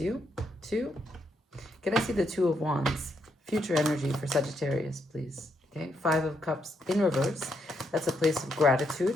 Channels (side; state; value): both; normal; correlation 0.78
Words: to. Can I see the Two of Wands? Future energy for Sagittarius, please. Okay, Five of Cups in reverse. That's a place of